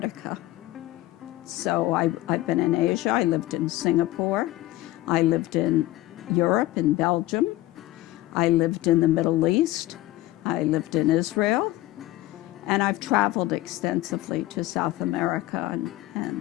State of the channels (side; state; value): right; quieter; 16.9 dB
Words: So I've been in Asia. I lived in Singapore. I lived in Europe, in Belgium. I lived in the Middle East, I lived in Israel, and I've traveled extensively to South America